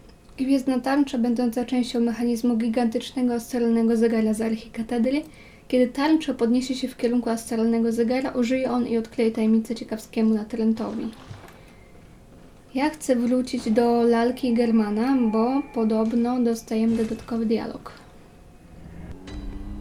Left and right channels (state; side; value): identical; both; correlation 1.00